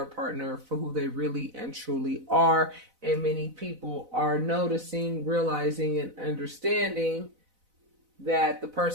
partner for who they really and truly are. And many people are noticing, realizing, and understanding that the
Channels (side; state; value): left; late; 4.0 ms